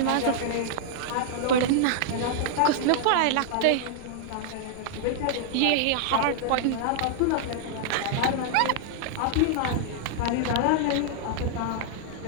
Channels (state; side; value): different; both; correlation -0.01